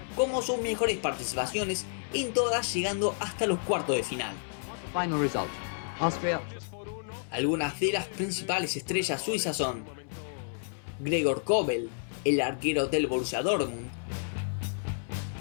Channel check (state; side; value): silent; right; 57 dB below the other